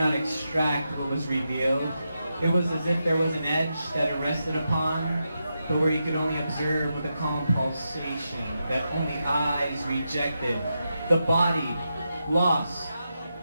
extract what was revealed. It was as if there was an edge that it rested upon, but where you could only observe with a calm pulsation that only eyes rejected. The body, lost,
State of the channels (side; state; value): both; inverted; correlation -0.86